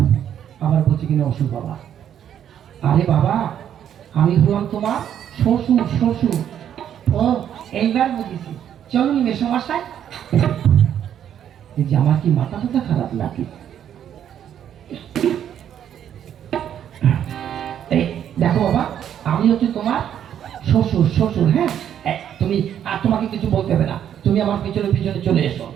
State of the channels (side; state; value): left; quieter; 9.7 dB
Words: আবার বলছি কিনা অসুর বাবা। আরে বাবা, আমি হলাম তোমার শ্বশুর। শ্বশুর, ও এইবার বুঝেছি। চলুন মেসমশাই। এই যে আমার কি মাথা টাথা খারাপ লাগে। এই দেখো বাবা, আমি হচ্ছে তোমার শ্বশুর। শ্বশুর, হ্যাঁ। তুমি আর তোমাকে কিছু বলতে হবে না, তুমি আমার পিছনে পিছনে চলে এসো।